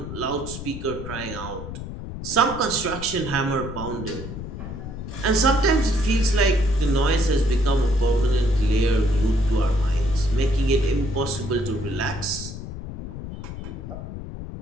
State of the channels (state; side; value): noise; left; rumble, 9 dB below the sound